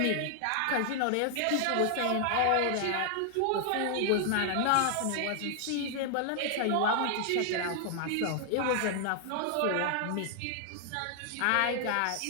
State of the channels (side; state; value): both; different; correlation 0.00